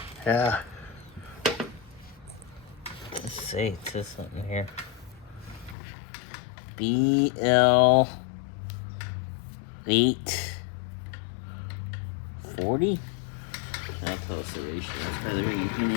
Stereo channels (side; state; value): right; drops out; at 5.8 s